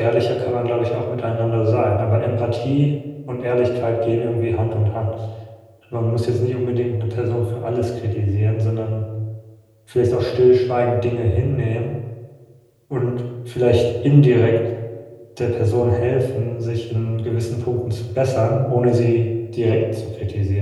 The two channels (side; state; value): both; identical; correlation 1.00